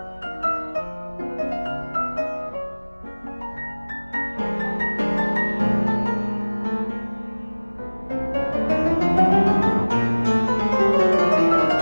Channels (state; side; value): inverted; both; correlation -1.00